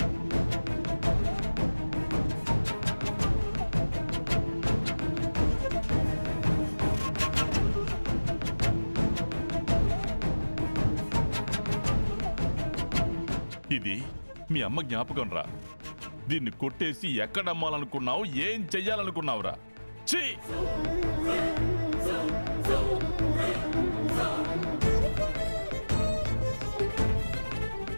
ఇది మీ అమ్మ జ్ఞాపకం రా. దీన్ని కొట్టేసి ఎక్కడమ్మాలనుకున్నావు? ఏం చెయ్యాలనుకున్నావురా? ఛీ!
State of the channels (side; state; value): both; inverted; correlation -1.00